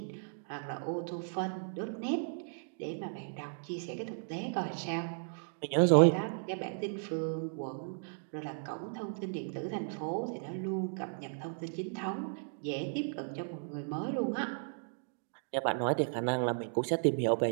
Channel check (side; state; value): left; silent; digital silence